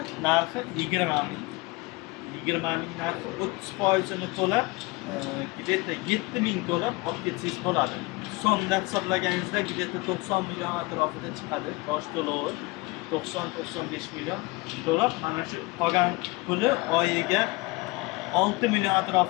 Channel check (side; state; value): right; quieter; 23.8 dB